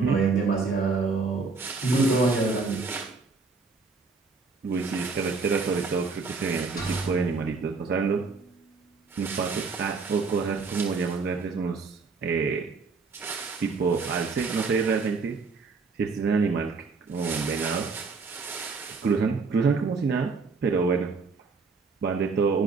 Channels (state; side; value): quieter; left; 4.4 dB